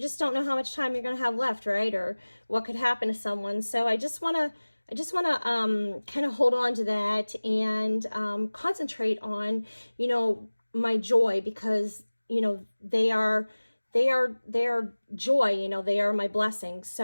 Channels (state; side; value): inverted; both; correlation -1.00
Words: just don't know how much time you're going to have left, right? Or what could happen to someone. So I just want to kind of hold on to that and concentrate on, my joy, because, they are joy, they are my blessings.